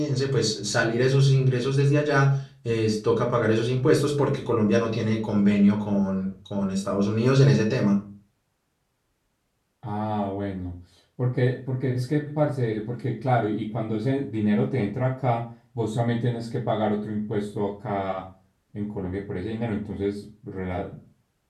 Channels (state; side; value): identical; both; correlation 1.00